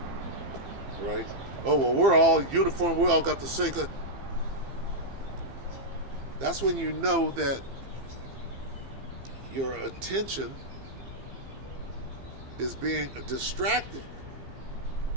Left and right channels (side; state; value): left; late; 15 ms